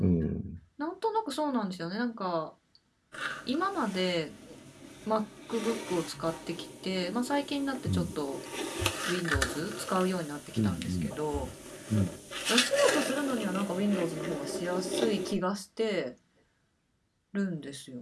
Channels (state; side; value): identical; both; correlation 1.00